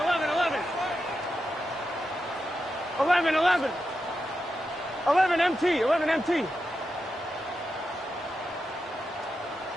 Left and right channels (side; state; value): both; normal; correlation 0.88